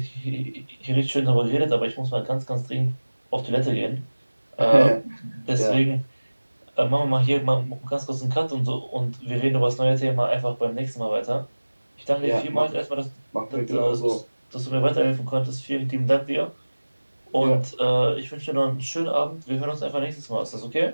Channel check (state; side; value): inverted; both; correlation -1.00